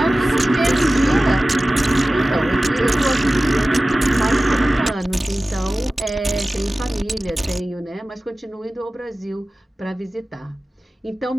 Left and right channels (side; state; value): both; normal; correlation 0.96